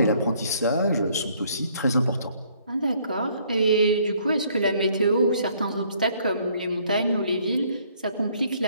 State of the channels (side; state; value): both; inverted; correlation -0.64